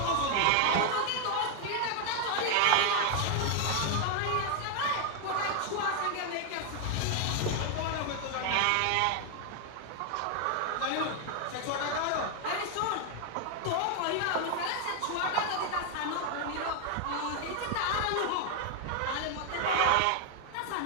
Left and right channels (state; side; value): different; both; correlation 0.00